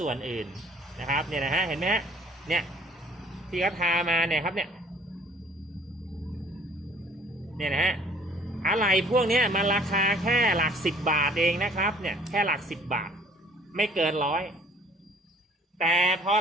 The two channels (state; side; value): normal; both; correlation 0.55